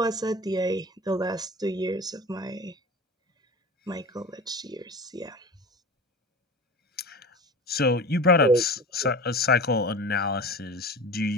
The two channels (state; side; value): normal; both; correlation 0.34